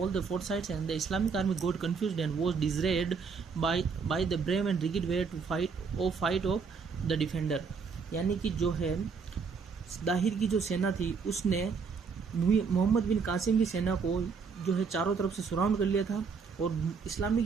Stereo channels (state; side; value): quieter; left; 5.4 dB